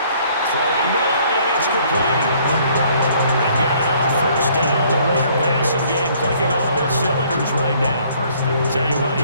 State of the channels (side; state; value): both; inverted; correlation -0.61